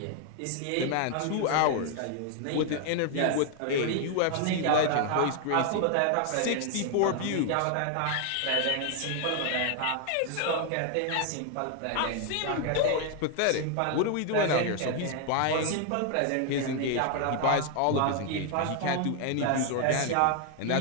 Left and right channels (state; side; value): different; both; correlation 0.00